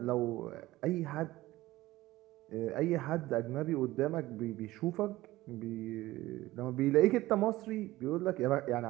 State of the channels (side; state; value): left; quieter; 17.4 dB